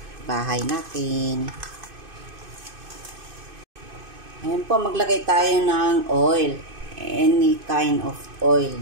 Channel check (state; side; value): late; left; 2.5 ms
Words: bahay natin. Ayan po, maglagay tayo ng oil. Any kind of oil